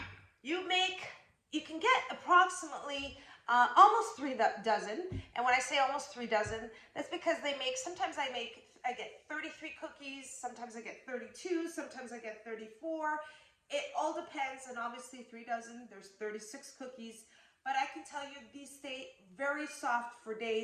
You can get approximately almost 3 dozen. And when I say almost 3 dozen, that's because sometimes I get 33 cookies, sometimes I get 32, sometimes I get 34. It all depends, and obviously 3 dozen, there's 36 cookies. But I can tell you these stay very soft for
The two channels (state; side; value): identical; both; correlation 1.00